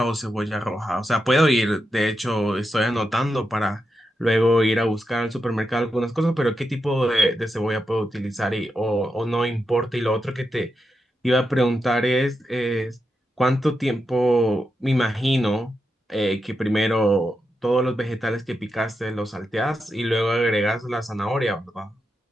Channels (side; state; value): both; normal; correlation 0.87